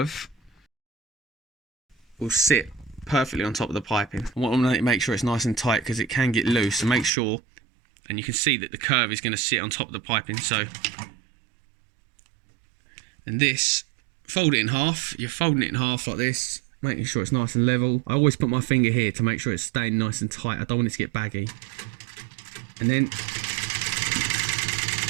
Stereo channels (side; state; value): left; drops out; at 7.1 s